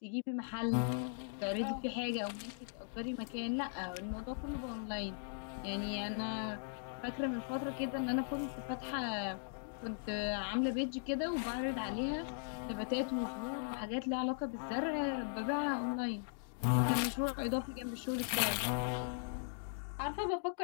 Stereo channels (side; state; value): right; silent; digital silence